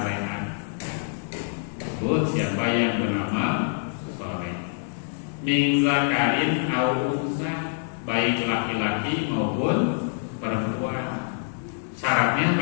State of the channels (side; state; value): right; silent; digital silence